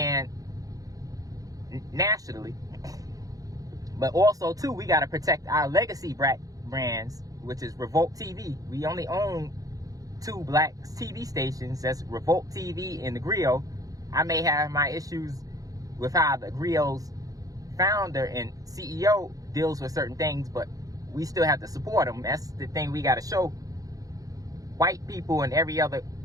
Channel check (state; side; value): late; left; 0.17 ms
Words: nationally. But also, too, we got to protect our legacy brands, which is Revolt TV. We only own 2 Black TV stations. That's Revolt TV and The Griot. I may have my issues with how The Griot's founder and CEO deals with certain things, but we still have to support them. That's the thing we got to show white people and every other